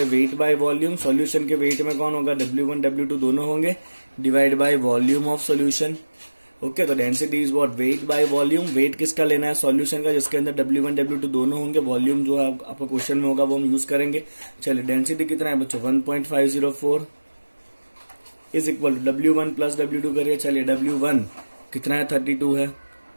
वेट बाय वॉल्यूम। सॉल्यूशन के वेट में कौन होगा, W1 W2 दोनों होंगे, divide by volume of solution. Okay, तो density is what, weight by volume. Weight किसका लेना है, सॉल्यूशन का, जिसके अंदर W1 W2 दोनों होंगे। वॉल्यूम जो है आपका क्वेश्चन में होगा वो हम यूज करेंगे। चलिए, डेंसिटी कितना है बच्चों, 1.504 is equal to W1 plus W2 करिए। चलिए, W1 कितना है 32 है,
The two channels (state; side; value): inverted; both; correlation -1.00